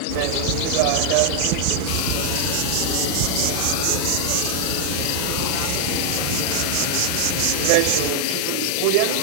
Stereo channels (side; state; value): both; different; correlation -0.01